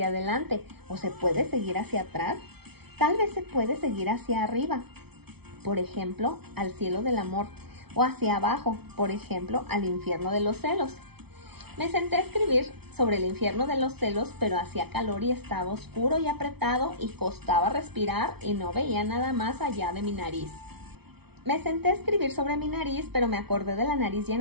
adelante, o se puede seguir hacia atrás. Tal vez se puede seguir hacia arriba, por ejemplo, al cielo del amor, o hacia abajo, por ejemplo, al infierno de los celos. Me senté a escribir sobre el infierno de los celos, pero hacía calor y estaba oscuro y apretado y costaba respirar y no veía nada más allá de mi nariz. Me senté a escribir sobre mi nariz, pero me acordé de la nariz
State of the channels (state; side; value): late; left; 0.97 ms